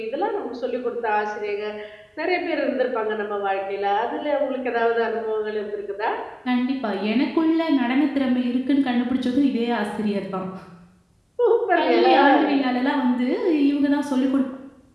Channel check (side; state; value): both; identical; correlation 1.00